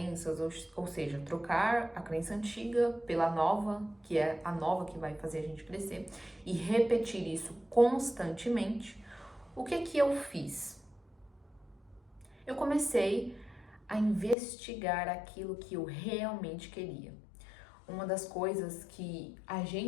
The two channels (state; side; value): drops out; right; at 14.4 s